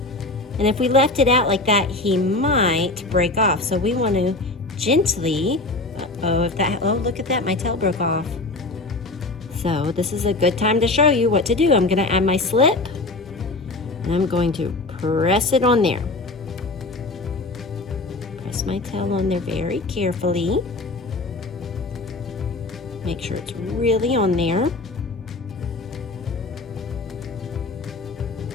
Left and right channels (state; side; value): quieter; right; 3.1 dB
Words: And if we left it out like that, he might break off. So we want to gently, oh, look at that, my tail broke off. So this is a good time to show you what to do. I'm gonna add my slip, and I'm going to press it on there. Press my tail on there very carefully. Make sure it's really on there.